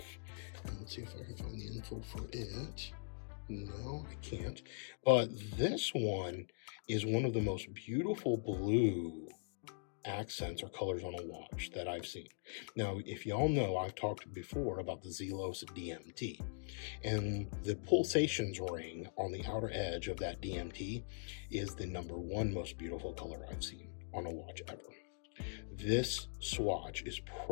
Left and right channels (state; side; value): silent; right; digital silence